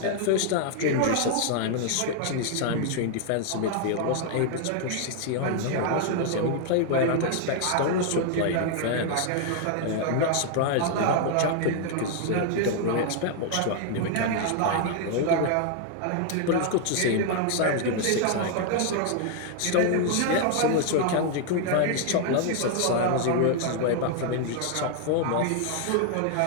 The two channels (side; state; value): both; different; correlation 0.00